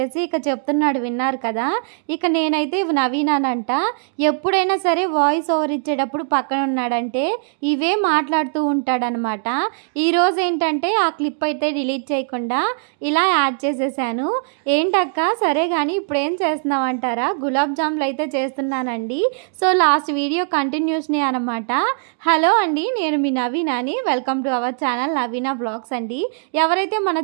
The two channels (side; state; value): left; silent; digital silence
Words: ఇక చెప్తున్నాడు, విన్నారు కదా. ఇక నేనైతే నవీనానంట. ఎప్పుడైనా సరే వాయిస్ ఓవర్ ఇచ్చేటప్పుడు పక్కన ఉన్నాడంటే ఇవే మాట్లాడుతూ ఉంటాడనమాట. ఈరోజు ఏంటంటే ఆ క్లిప్ అయితే డిలీట్ చేయకుండా ఇలా యాడ్ చేసేసాను. ఏంటక్క సరే కానీ ఇప్పుడు ఏం చేస్తున్నావు అంటారా, గులాబ్ జాములు అయితే చేస్తున్నానండి. సో లాస్ట్ వీడియో కంటిన్యూస్నే అనమాట. హలో అండి, నేను మీ నవీనాని. Welcome to our channel Naveena blogs అండి. ఎవరైతే మన